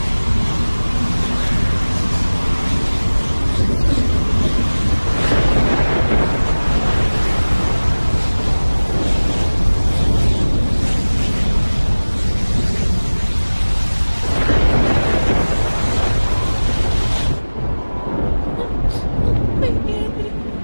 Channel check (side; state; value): both; inverted; correlation -1.00